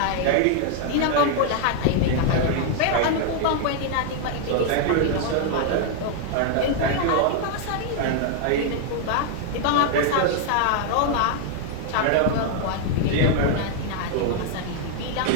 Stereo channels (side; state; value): both; different; correlation 0.00